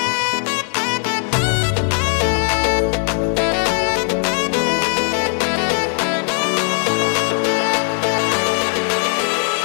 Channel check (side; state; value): right; silent; 57 dB below the other